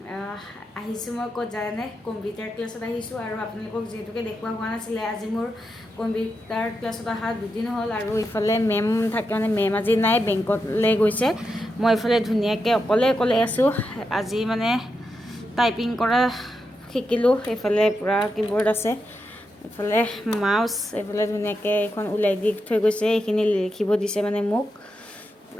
আহিছোঁ মই ক'ত জানে কম্পিউটাৰ ক্লাছত আহিছোঁ আৰু আপোনালোকক যিহেতুকে দেখুওৱা হোৱা নাছিলে আজি মোৰ কম্পিউটাৰ ক্লাছত অহা দুদিন হ'ল আৰু ইফালে মেম থাকে মানে মেম আজি নাই বেংকলৈ গৈছে মই ইফালে ধুনীয়াকৈ অকলে আছোঁ আজি মানে টাইপিং কৰা শিকিলোঁ এইফালে পূৰা কিবৰ্ড আছে এফালে মাউস এফালে ধুনীয়াকৈ এখন ওলাই দি থৈ গৈছে এইখিনি লিখিব দিছে মানে মোক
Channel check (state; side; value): normal; both; correlation 0.86